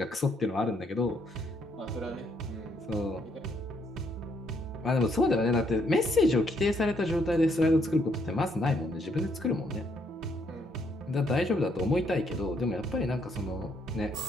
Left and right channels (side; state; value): both; normal; correlation 0.71